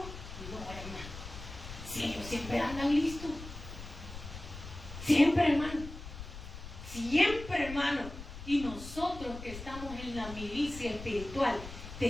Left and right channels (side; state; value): left; noise; rumble, 11 dB below the sound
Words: hermano. Si ellos siempre andan listos. Siempre, hermano. Siempre, hermano. Y nosotros que estamos en la milicia espiritual,